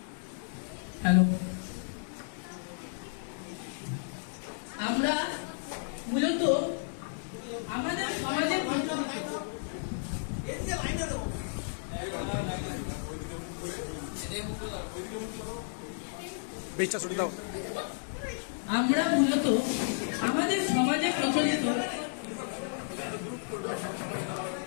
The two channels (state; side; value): silent; right; 56 dB below the other